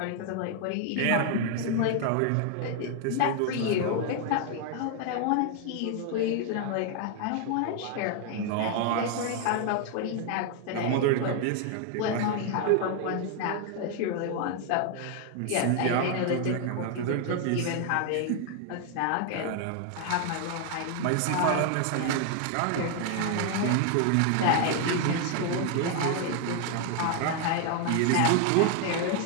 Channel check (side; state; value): both; different; correlation 0.00